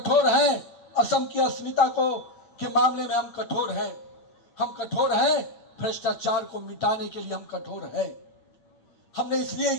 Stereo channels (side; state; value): right; late; 8.7 ms